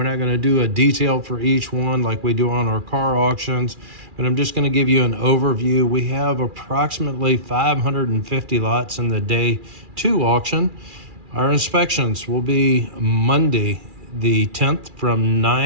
not going to do a detail for each one like we do on our car auctions, but I'm just going to give you an overview. We have approximately 550 lots in the day two auction. Our inspections will be Monday the 10th from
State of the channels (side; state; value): left; late; 2.4 ms